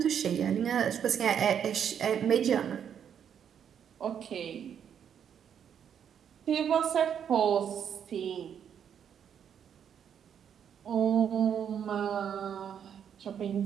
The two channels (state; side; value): quieter; left; 8.4 dB